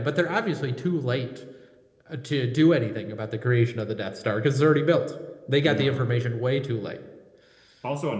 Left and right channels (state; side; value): identical; both; correlation 1.00